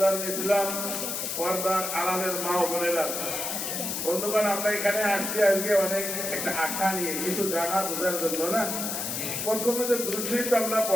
ইসলাম পর্দার আড়ালের মা ও বোনেরা বন্ধুগণ আমরা এখানে আসছি আজকে অনেক একটা আশা নিয়ে কিছু জানা বোঝার জন্য না প্রথমে যে দুঃশিক্ষা আমরা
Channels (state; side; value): noise; left; hiss, 3 dB below the sound